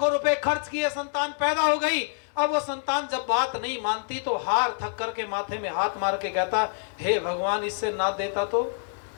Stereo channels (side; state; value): right; silent; digital silence